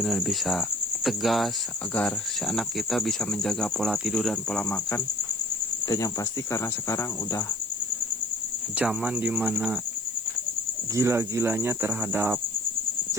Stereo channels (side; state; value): left; noise; hiss, 19 dB below the sound